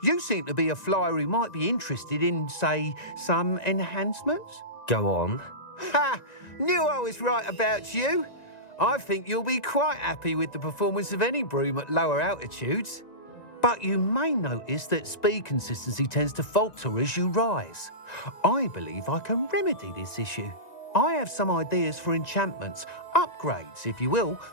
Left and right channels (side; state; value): right; late; 1.9 ms